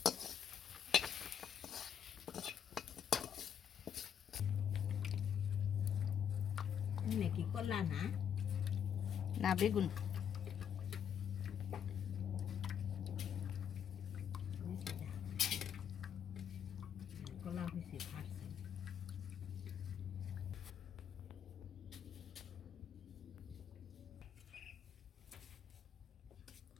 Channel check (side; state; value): right; quieter; 8.4 dB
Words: কি করলা না না বেগুন কলা হয়েছে ফাটছে